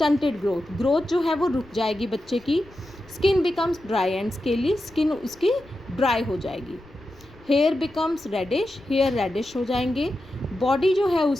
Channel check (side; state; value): left; noise; rumble, 25 dB below the sound